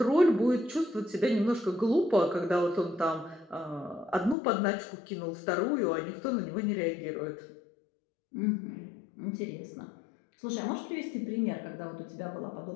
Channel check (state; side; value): drops out; right; at 4.4 s